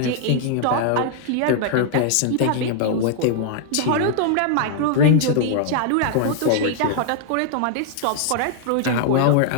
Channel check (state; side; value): different; both; correlation 0.00